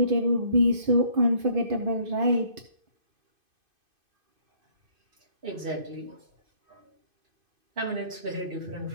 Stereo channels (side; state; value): left; late; 2.5 ms